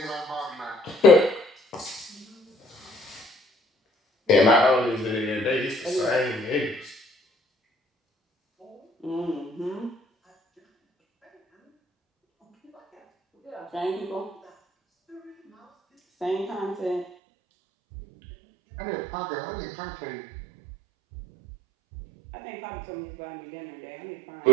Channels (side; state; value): left; drops out; at 17.1 s